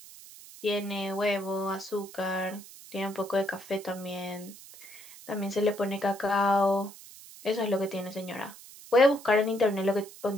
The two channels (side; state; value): right; noise; hiss, 18 dB below the sound